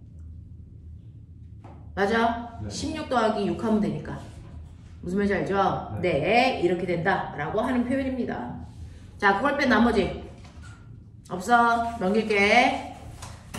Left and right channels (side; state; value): both; identical; correlation 1.00